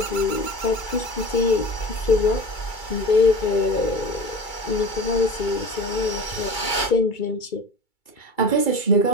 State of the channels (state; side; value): late; right; 2.3 ms